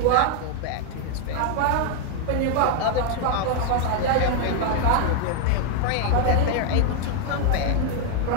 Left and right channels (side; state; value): both; different; correlation 0.01